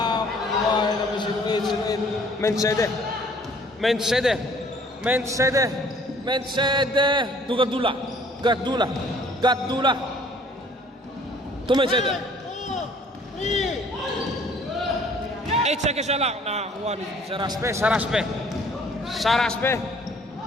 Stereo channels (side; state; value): both; normal; correlation 0.56